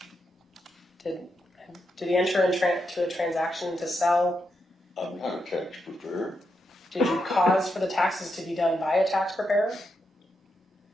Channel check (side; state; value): both; normal; correlation 0.83